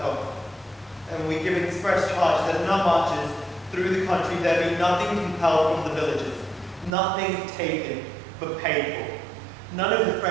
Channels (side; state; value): left; drops out; at 6.9 s